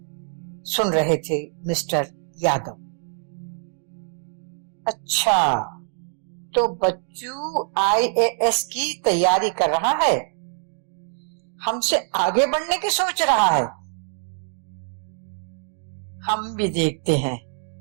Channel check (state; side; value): silent; left; digital silence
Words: सुन रहे थे मिस्टर यादव। अच्छा, तो बच्चू IAS की तैयारी कर रहा है, हमसे आगे बढ़ने की सोच रहा है। हम भी देखते हैं